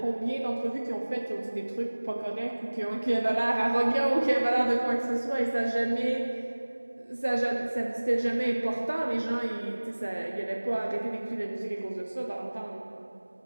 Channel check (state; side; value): inverted; both; correlation -1.00